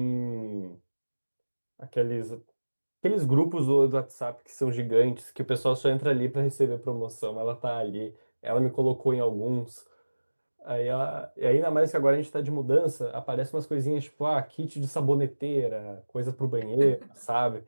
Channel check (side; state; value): both; inverted; correlation -1.00